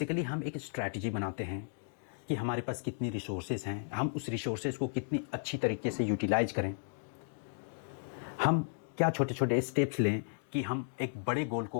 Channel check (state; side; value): silent; right; digital silence